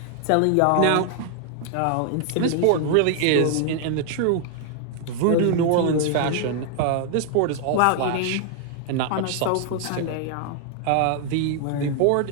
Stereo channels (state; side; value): different; both; correlation 0.00